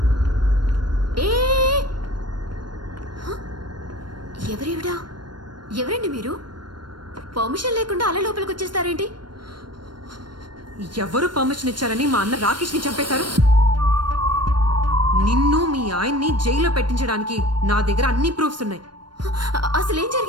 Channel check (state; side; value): late; left; 0.72 ms